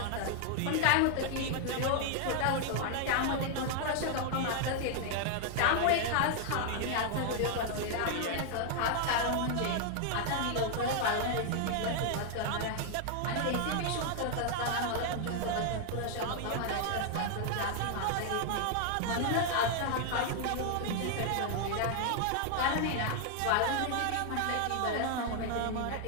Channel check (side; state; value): both; different; correlation 0.00